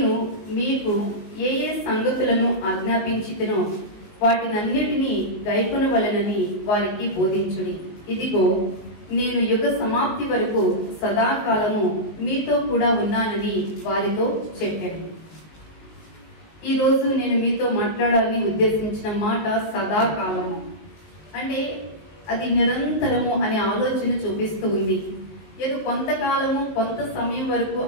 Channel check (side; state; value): right; late; 19 ms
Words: మీకు ఏ సంగతులను ఆజ్ఞాపించితినో వాటినన్నిటినీ గైకొనవలెనని వారికి బోధించుడి. ఇదిగో నేను యుగ సమాప్తి వరకు సదాకాలము మీతో కూడా ఉన్నానని వారితో చెప్పాను. ఈ రోజు నేను మీతో మాట్లాడాలని ఉద్దేశించిన మాట సదాకాలము అంటే అది నిరంతరము అనే ఆలోచన చూపిస్తూ ఉంది. ఏదో కొంతకాలము కొంత సమయం వరకు